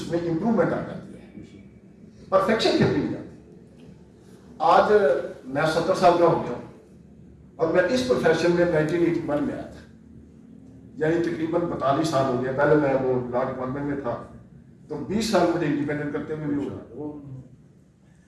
इंप्रूवमेंट आ जाती है, परफेक्शन फिर भी नहीं जाती। आज मैं 70 साल का हो गया और मैं इस प्रोफेशन में 1981 में आया था, यानी तकरीबन 42 साल हो गया। पहले मैं वो लॉ डिपार्टमेंट में था, तो 20 साल मुझे इंडिपेंडेंट करते हुए भी हुआ।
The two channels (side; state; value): both; identical; correlation 1.00